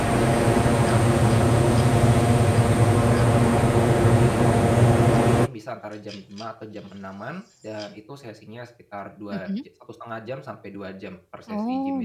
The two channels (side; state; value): both; identical; correlation 1.00